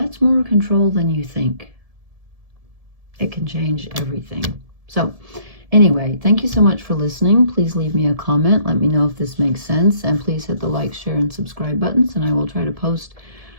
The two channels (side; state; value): left; late; 1.7 ms